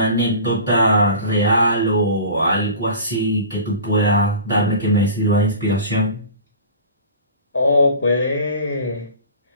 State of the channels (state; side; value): inverted; both; correlation -0.39